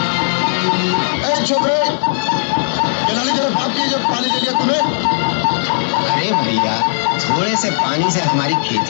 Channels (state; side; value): silent; right; digital silence